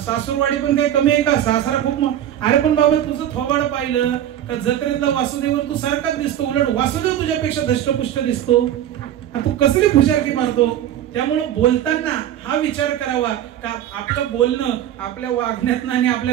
पण काही कमी आहे का? सासरा खूप. अरे पण बाबा तुझं थोबाड पाहिलं का जत्रेतला वासुदेव तू सारखाच दिसतो, उलट वासुदेव तुझ्यापेक्षा धष्टपुष्ट दिसतो. आता तू कसली फुशारकी मारतो? त्यामुळे बोलताना हा विचार करावा का आपलं बोलणं आपल्या वागण्यातनं आणि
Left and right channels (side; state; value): left; quieter; 11.2 dB